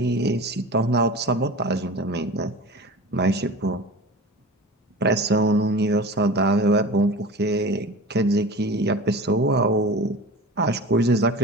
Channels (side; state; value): both; normal; correlation 0.34